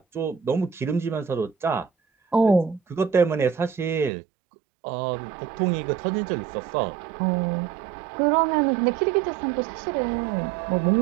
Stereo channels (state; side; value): drops out; left; at 4.1 s